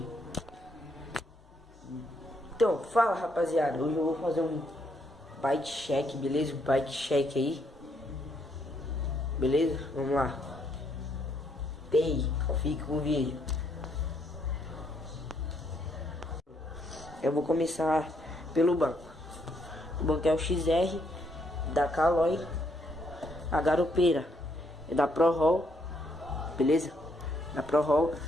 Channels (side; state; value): both; normal; correlation 0.73